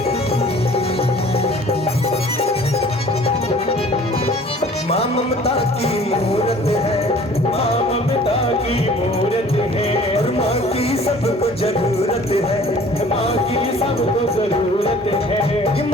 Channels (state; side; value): normal; both; correlation 0.50